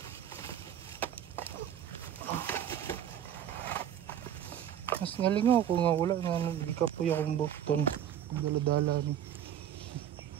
Mas nalingaw ko nga wala nga nagikapoy akong bukton. Dala-dala ni.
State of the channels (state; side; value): quieter; left; 10.1 dB